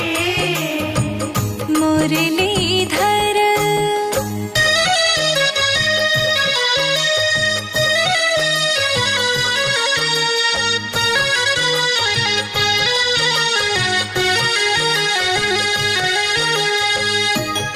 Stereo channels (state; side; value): identical; both; correlation 1.00